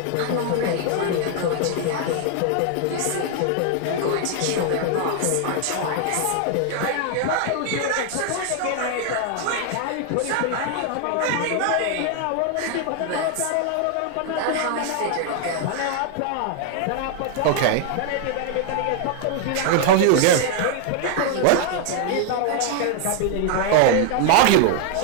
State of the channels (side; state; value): both; different; correlation 0.00